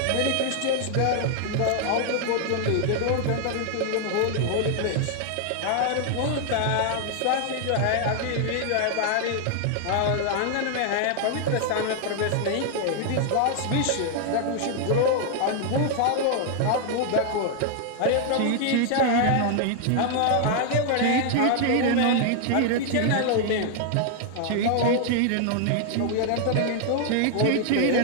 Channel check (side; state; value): both; different; correlation 0.00